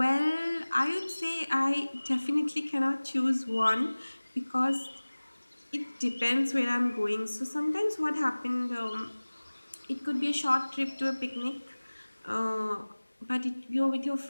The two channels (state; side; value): inverted; both; correlation -1.00